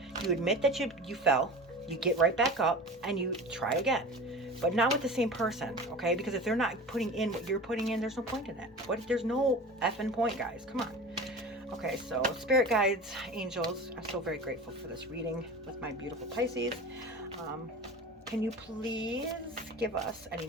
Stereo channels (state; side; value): normal; both; correlation 0.34